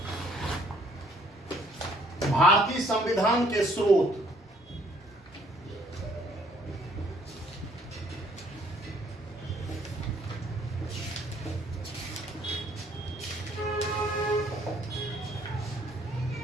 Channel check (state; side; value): normal; both; correlation 0.63